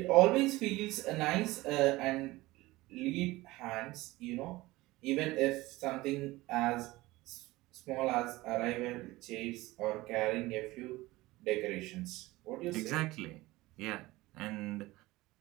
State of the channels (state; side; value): quieter; left; 19.5 dB